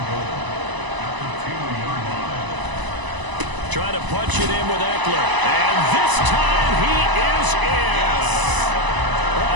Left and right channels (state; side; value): late; left; 1.0 ms